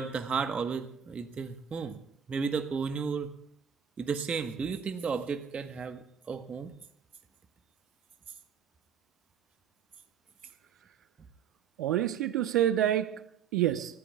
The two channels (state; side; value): quieter; left; 7.9 dB